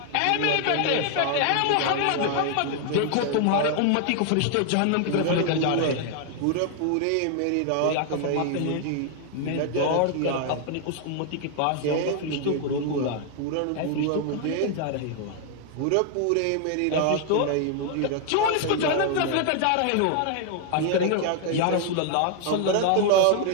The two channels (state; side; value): different; both; correlation 0.00